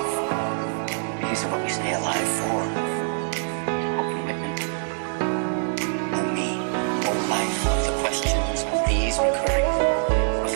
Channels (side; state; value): left; silent; 62 dB below the other